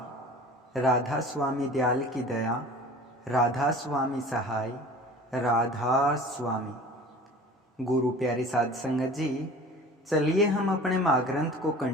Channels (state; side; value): normal; both; correlation 0.42